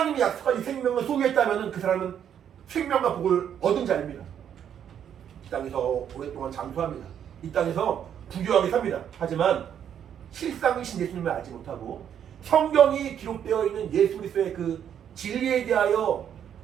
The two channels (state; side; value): quieter; left; 9.1 dB